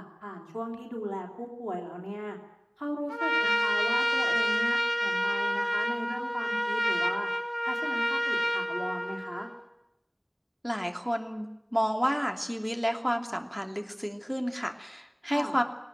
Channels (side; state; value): both; identical; correlation 1.00